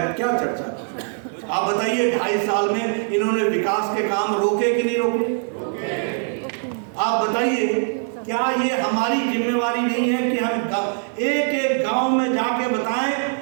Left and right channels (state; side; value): silent; left; 64 dB below the other